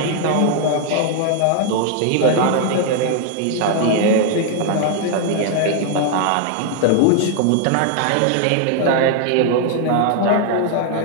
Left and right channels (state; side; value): different; both; correlation 0.00